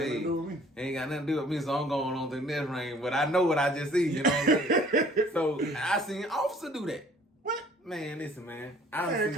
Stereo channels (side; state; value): both; normal; correlation 0.55